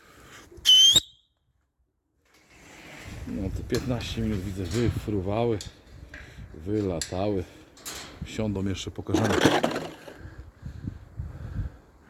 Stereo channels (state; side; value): identical; both; correlation 1.00